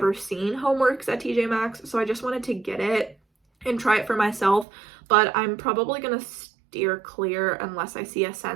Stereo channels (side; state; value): left; drops out; at 4.7 s